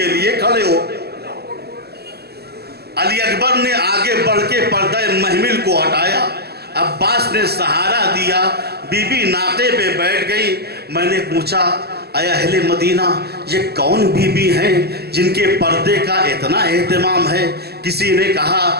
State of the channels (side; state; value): left; late; 0.46 ms